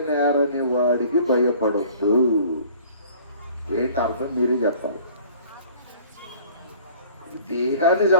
వాడికి భయపడొద్దు. ఏంటి అర్థం? మీరే చెప్పాలి. దేహాన్ని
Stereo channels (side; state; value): both; inverted; correlation -0.50